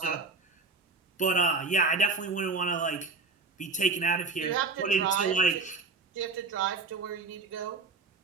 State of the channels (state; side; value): quieter; left; 4.0 dB